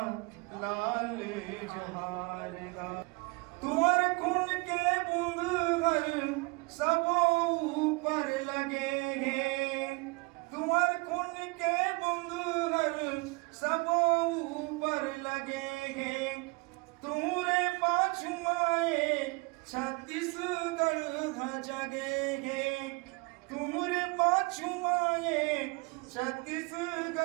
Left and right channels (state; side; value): quieter; left; 28.8 dB